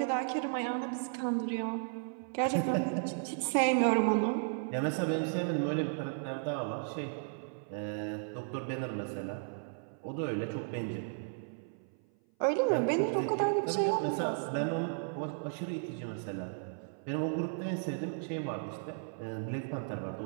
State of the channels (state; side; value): silent; left; 55 dB below the other